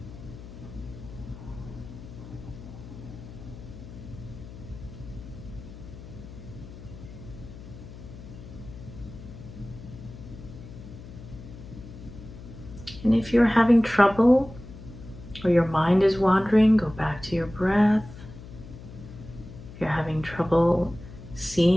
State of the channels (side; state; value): left; noise; hum, 15 dB below the sound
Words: And if you're having trouble or your mind is wandering, go back to your breath. If you're having trouble